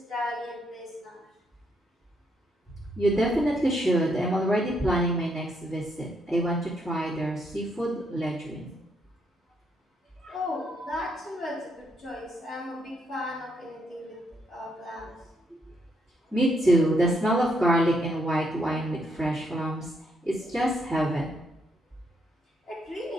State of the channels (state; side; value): normal; both; correlation 0.75